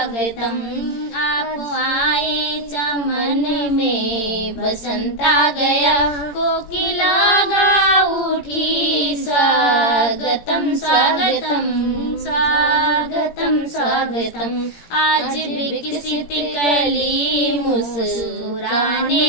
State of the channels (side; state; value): right; late; 17 ms